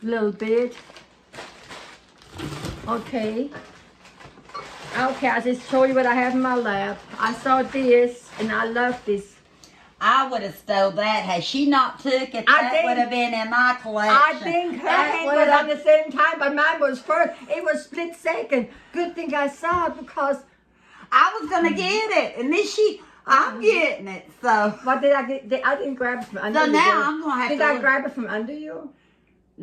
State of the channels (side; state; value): both; identical; correlation 1.00